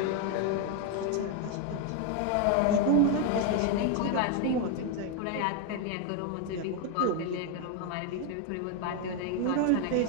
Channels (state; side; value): different; both; correlation 0.01